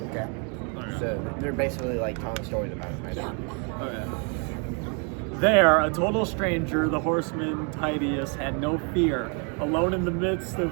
Okay. So they're basically like telling stories about him right now. Okay. There, a total stranger, the horseman Titius had no fear, alone in the midst of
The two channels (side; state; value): left; quieter; 37.3 dB